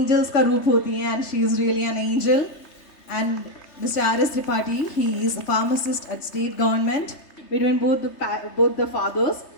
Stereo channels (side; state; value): right; late; 3.3 ms